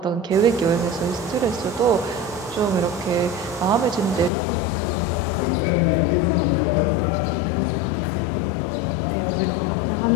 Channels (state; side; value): drops out; right; at 4.3 s